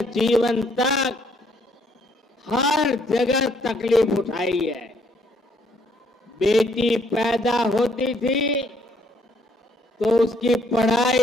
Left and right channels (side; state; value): both; normal; correlation 0.68